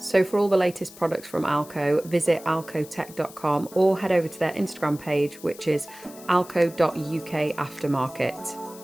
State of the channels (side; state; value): left; noise; hiss, 19 dB below the sound